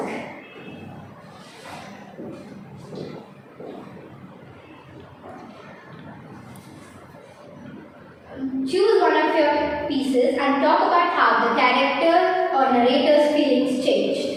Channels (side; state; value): both; identical; correlation 1.00